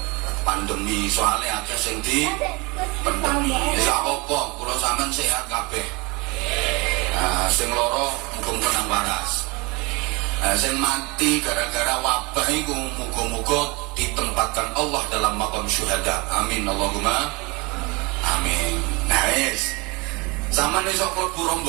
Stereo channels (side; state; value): left; quieter; 26.5 dB